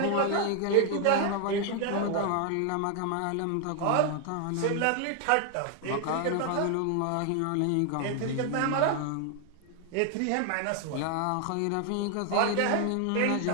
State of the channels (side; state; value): both; different; correlation 0.00